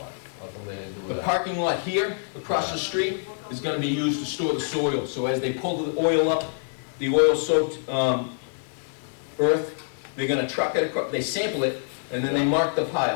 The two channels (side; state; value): right; silent; 61 dB below the other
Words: How come they didn't do The that? parking lot here, across the street, is gonna be used to store the soil. So as they pull the oil up, the oil-soaked earth, they're gonna truck it across, they sample it, and then they mark the